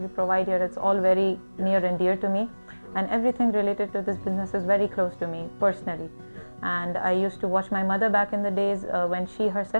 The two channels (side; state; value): both; inverted; correlation -1.00